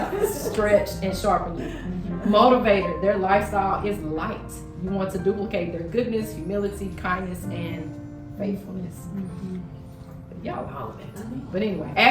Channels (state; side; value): identical; both; correlation 1.00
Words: stretch, and sharpen you. Motivator, their lifestyle is light. You want to duplicate their goodness, humility, kindness, and faithfulness. Y'all holler back to me. But anyway,